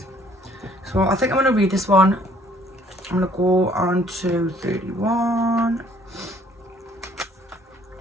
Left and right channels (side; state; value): both; normal; correlation 0.60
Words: so I think I'm going to read this one. I'm going to go on to 31.